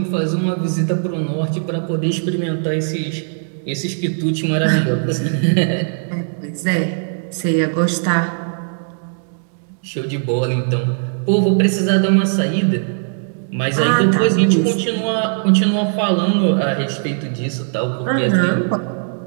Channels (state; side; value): silent; left; digital silence